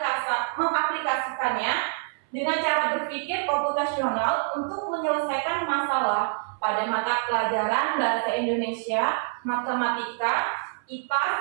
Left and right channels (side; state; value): left; silent; 59 dB below the other